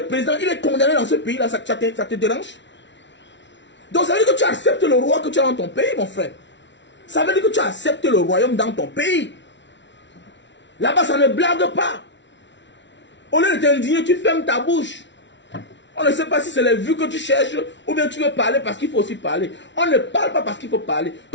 est président, il est condamné dans ce pays-là, ça te dérange? Donc ça veut dire que tu acceptes le roi que tu as dans ton pays, mon frère. Ça veut dire que tu acceptes le royaume dans ton pays. Là-bas, ça ne blague pas. Au lieu de t'indigner, tu fermes ta bouche. On ne sait pas si c'est les vues que tu cherches ou bien tu veux parler parce qu'il faut aussi parler. On ne parle pas parce qu'il faut parler.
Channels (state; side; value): late; right; 0.52 ms